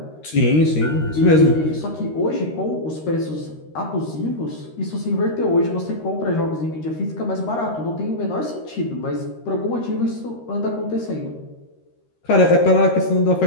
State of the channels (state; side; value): late; right; 13 ms